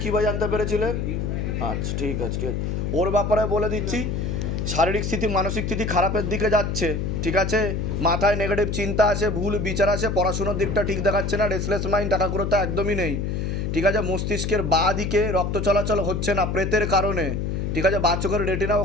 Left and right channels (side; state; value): left; noise; hum, 1 dB below the sound